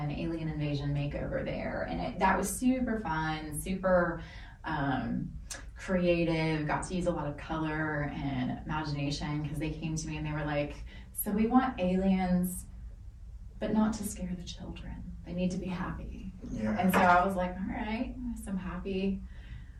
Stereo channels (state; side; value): identical; both; correlation 1.00